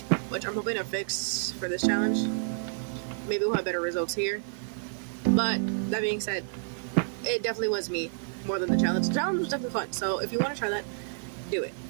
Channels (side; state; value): left; silent; digital silence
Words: which I'm hoping to fix for this challenge. Maybe we'll have better results here. But that being said, it definitely was me more than the challenge. The challenge was definitely fun, so if you want to try that, do it.